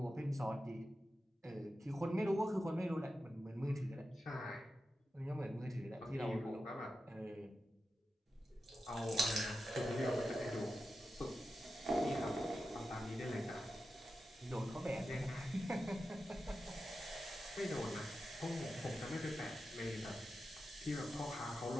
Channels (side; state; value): both; normal; correlation 0.91